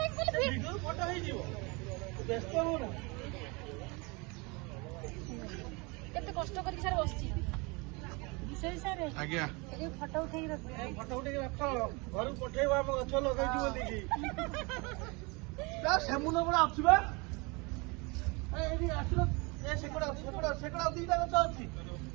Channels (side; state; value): left; quieter; 28.0 dB